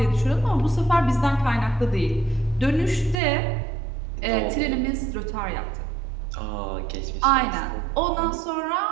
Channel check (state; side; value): drops out; left; at 3.2 s